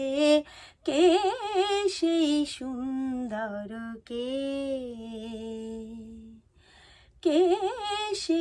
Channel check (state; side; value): identical; both; correlation 1.00